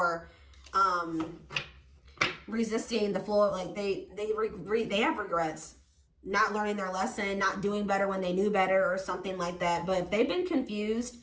resisting the flow. Like they have regrets. Not learning their lesson, not doing better when they knew better or something like that. But if they've been confused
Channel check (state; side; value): identical; both; correlation 1.00